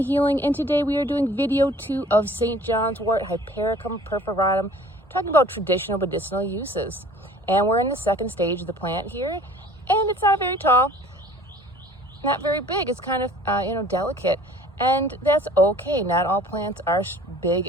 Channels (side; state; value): both; normal; correlation 0.50